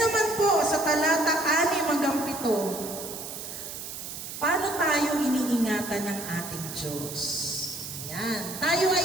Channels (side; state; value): right; noise; hiss, 9 dB below the sound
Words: po, sa talata 6-7, paano tayo iniingatan ng ating Diyos? Ayan. Tayo